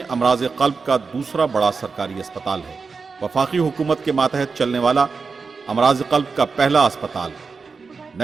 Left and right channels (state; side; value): quieter; left; 4.8 dB